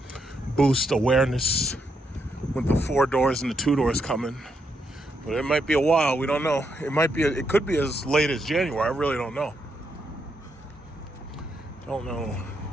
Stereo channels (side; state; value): both; normal; correlation 0.79